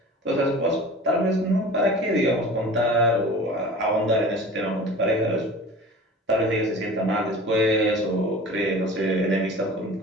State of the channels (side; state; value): both; normal; correlation 0.40